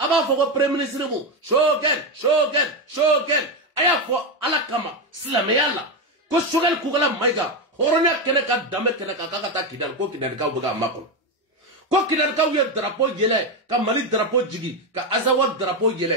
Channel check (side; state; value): both; normal; correlation 0.10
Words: foka prime ministry mu. Shogen. Aya fo alakama. Slameyala. Ko shogal kugala maiga. Hornya keneka dame keneka kakata kidal ko kidal ka buga makon. Ko kidal ka wiye drapeau yele. Ka mali drapeau jigi. Ka azawad drapeau